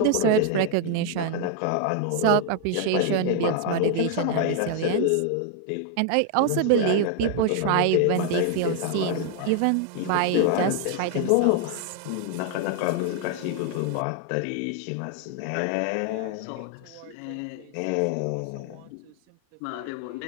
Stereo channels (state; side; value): different; both; correlation 0.00